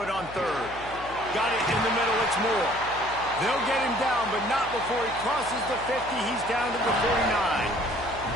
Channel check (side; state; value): left; noise; hum, 16 dB below the sound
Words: it on 3rd. Got it in the middle, it's Moore. They'll get him down, but not before he crosses the 50. He's down to the 49.